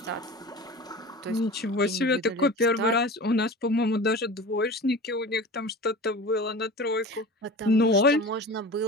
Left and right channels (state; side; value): normal; both; correlation 0.35